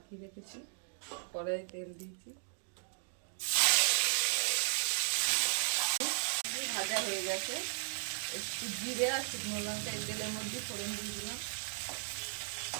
রেখেছি, কড়াই তেল দিয়েছি, ভাজা হয়ে গেছে। একটু জিরে আর শুকনো লঙ্কা এই তেলের মধ্যে ফোড়ন দিয়ে দিলাম,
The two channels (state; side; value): silent; left; digital silence